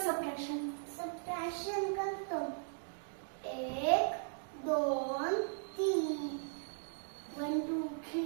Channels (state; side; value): silent; left; digital silence